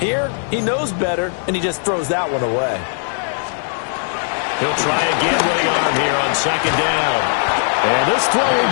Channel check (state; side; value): silent; right; 67 dB below the other